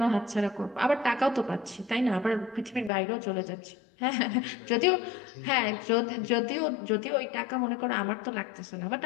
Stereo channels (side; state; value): right; drops out; at 2.9 s